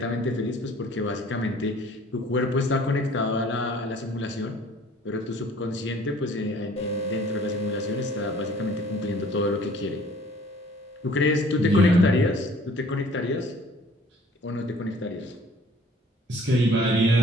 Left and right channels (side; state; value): both; normal; correlation 0.53